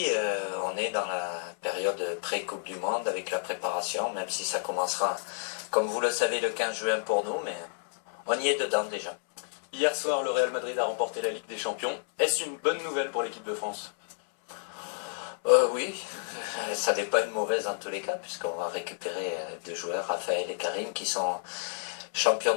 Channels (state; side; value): silent; right; 58 dB below the other